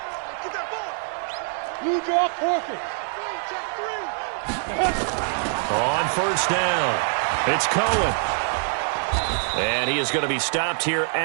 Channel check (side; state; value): left; silent; digital silence